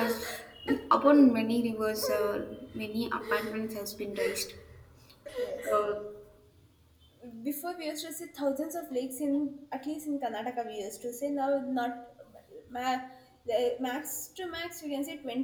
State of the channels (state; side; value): identical; both; correlation 1.00